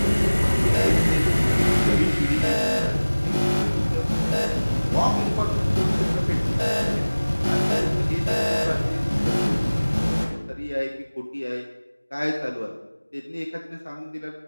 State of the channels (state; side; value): inverted; both; correlation -1.00